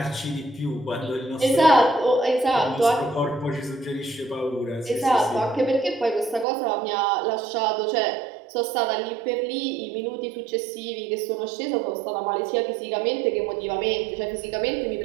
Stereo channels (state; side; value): drops out; left; at 6.5 s